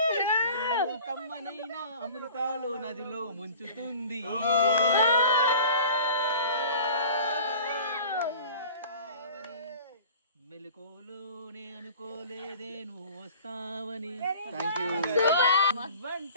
కమ్మనైనా అమృతాలు నదిలో ముంచుతుంది. మెలకువలోనే అనుకోలేదే నువ్వు వస్తావని. Thank you.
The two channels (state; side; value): inverted; both; correlation -0.43